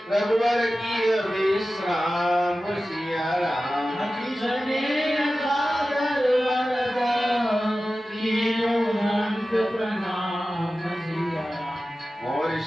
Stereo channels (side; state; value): both; normal; correlation 0.95